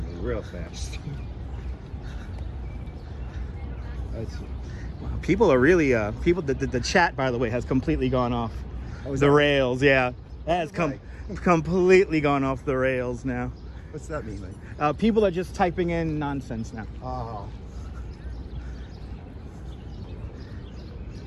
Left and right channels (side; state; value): both; identical; correlation 1.00